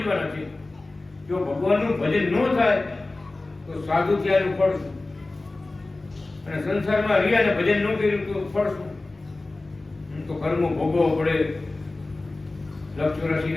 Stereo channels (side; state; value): right; quieter; 3.1 dB